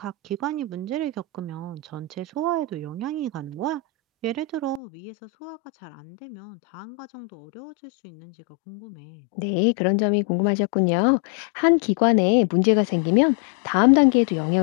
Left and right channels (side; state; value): right; drops out; at 4.8 s